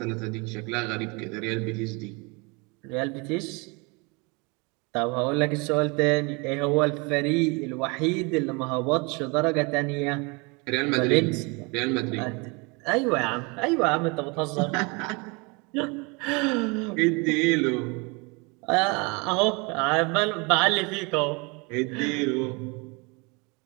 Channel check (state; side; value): quieter; left; 29.3 dB